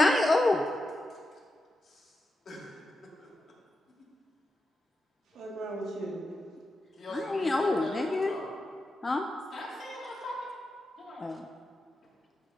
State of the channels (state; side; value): normal; both; correlation 0.89